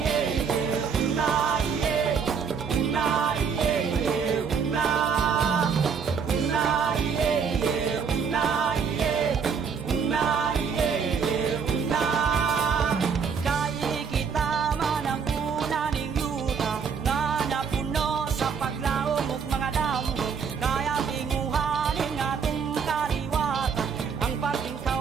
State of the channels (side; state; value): left; quieter; 6.3 dB